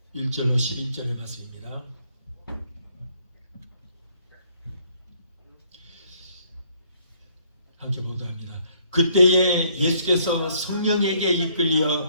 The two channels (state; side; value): inverted; both; correlation -0.66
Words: 1절로 11절의 말씀입니다. 함께 보도록 합니다. 그때에 예수께서 성령에게